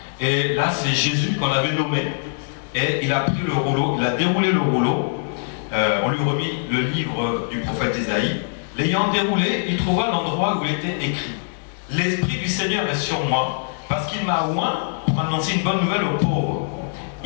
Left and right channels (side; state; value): right; silent; digital silence